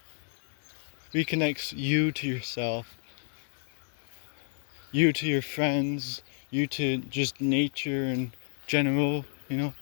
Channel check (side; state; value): right; silent; digital silence